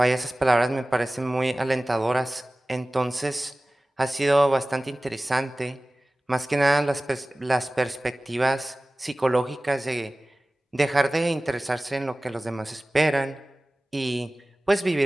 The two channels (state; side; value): normal; both; correlation 0.98